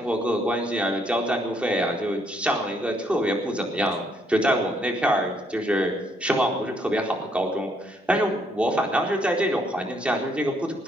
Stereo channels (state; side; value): normal; both; correlation 0.70